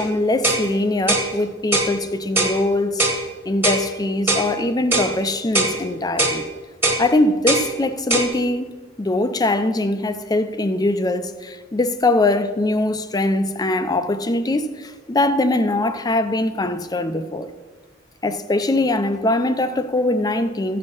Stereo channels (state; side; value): normal; both; correlation 0.49